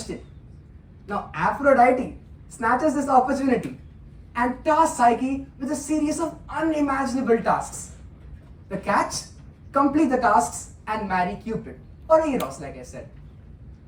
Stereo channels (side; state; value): both; identical; correlation 1.00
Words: Now Aphrodite snatches this opportunity and tasks Psyche with a series of unimaginable tasks. The catch? Complete the tasks and marry Cupid, or Eros, like I said.